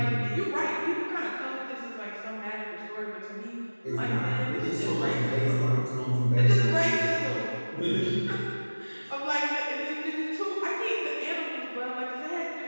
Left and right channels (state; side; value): inverted; both; correlation -1.00